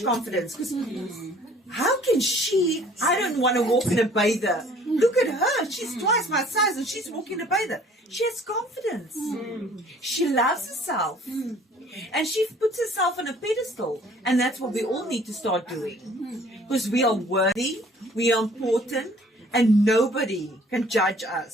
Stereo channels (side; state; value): both; normal; correlation 0.54